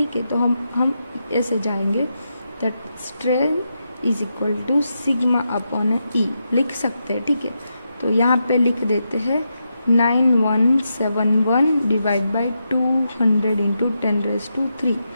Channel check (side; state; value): both; inverted; correlation -0.85